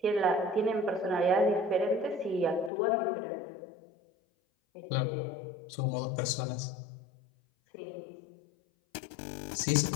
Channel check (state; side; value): drops out; right; at 2.7 s